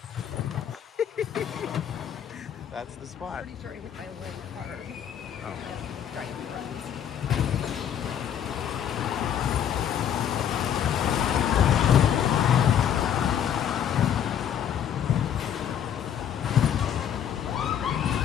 That's the spot. pretty sure I hit my leg hard. Oh. Giant runs.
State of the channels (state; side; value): quieter; right; 9.3 dB